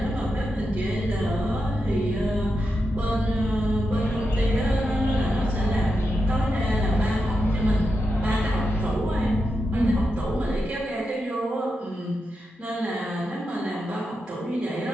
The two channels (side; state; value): both; normal; correlation 0.87